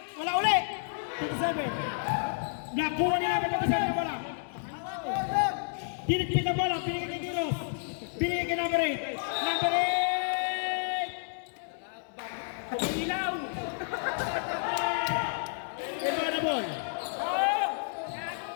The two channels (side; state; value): right; silent; 57 dB below the other